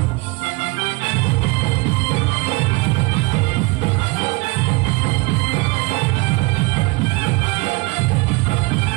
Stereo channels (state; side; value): quieter; left; 25.8 dB